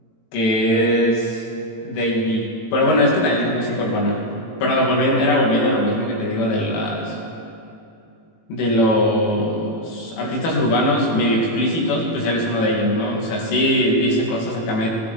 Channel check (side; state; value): right; late; 18 ms